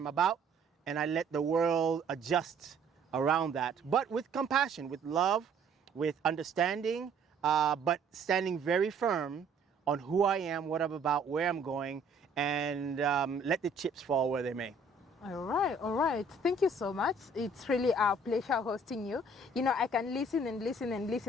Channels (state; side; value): quieter; left; 3.1 dB